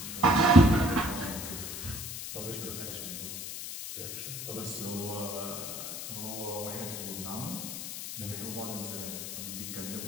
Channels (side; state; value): left; noise; hiss, 7 dB below the sound